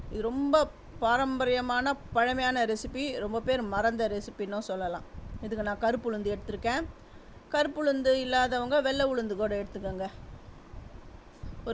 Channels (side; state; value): both; identical; correlation 1.00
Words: இது ரொம்ப பாரம்பரியமான பழமையான ரெசிபி. ரொம்ப பேர் மறந்த ரெசிபின்னும் சொல்லலாம். இதுக்கு நான் கருப்பு உளுந்து எடுத்திருக்கேன். கருப்பு உளுந்து இல்லாதவங்க வெள்ளை உளுந்து கூட எடுத்துக்கோங்க.